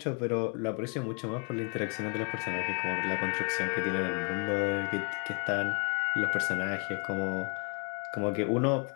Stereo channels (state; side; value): quieter; right; 37.1 dB